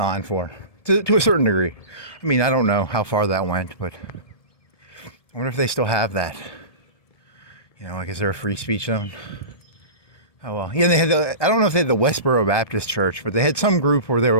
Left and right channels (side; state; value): right; late; 1.7 ms